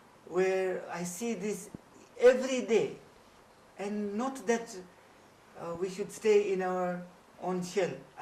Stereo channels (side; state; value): both; identical; correlation 1.00